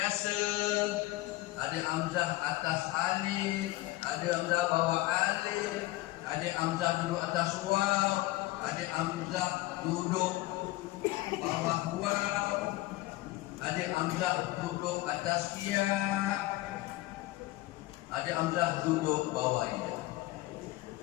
ada hamzah atas alif, ada hamzah bawah alif, ada hamzah duduk atas waw, ada hamzah duduk bawah waw, ada hamzah duduk atas ya, ada hamzah duduk bawah ya.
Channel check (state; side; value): quieter; right; 18.3 dB